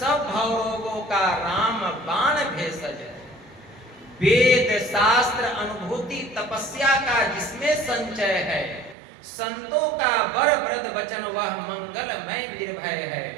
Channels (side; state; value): left; drops out; at 9.0 s